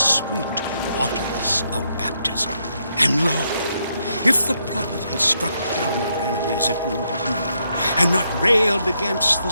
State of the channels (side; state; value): both; inverted; correlation -0.77